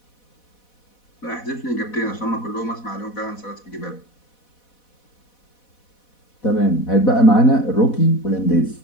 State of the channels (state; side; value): late; right; 4.1 ms